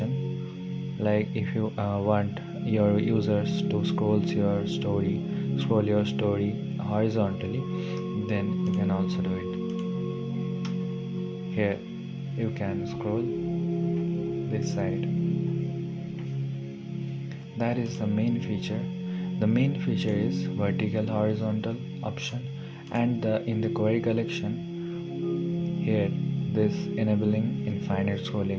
like if you want your users to scroll your story horizontally, then you can also do it. Here you can scroll this side. That is the main feature. The main feature is vertical horizontal option, and in the query collection here this enabling infinite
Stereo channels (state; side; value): identical; both; correlation 1.00